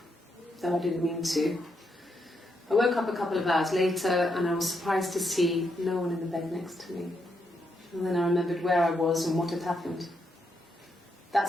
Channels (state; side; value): normal; both; correlation 0.80